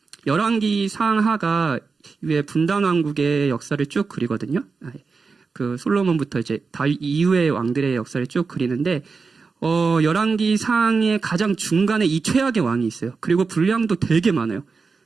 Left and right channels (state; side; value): quieter; left; 4.7 dB